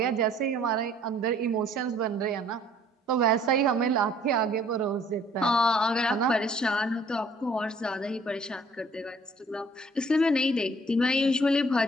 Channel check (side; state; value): both; normal; correlation 0.58